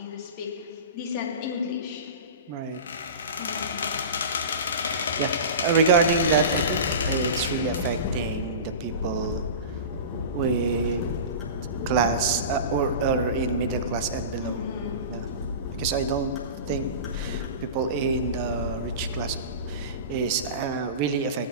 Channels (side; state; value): both; inverted; correlation -0.31